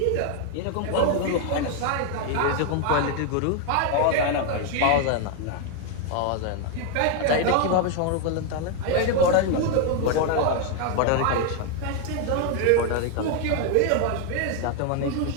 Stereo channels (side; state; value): both; different; correlation 0.01